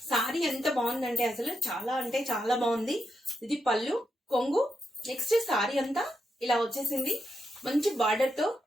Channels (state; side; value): normal; both; correlation 0.84